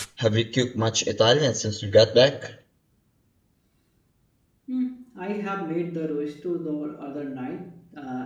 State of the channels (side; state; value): both; identical; correlation 1.00